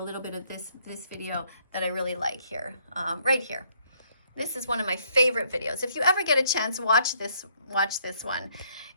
little bit of this video that I really like here, right here. This is one of my favorite videos. If you ever get a chance, watch this one.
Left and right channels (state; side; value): inverted; both; correlation -0.68